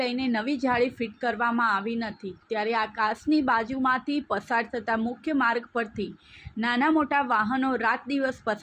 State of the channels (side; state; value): both; identical; correlation 1.00